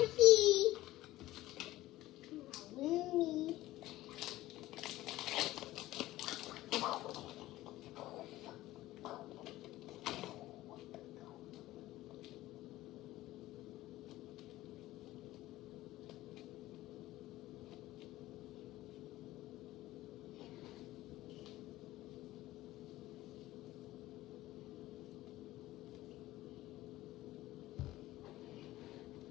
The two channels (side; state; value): right; quieter; 16.3 dB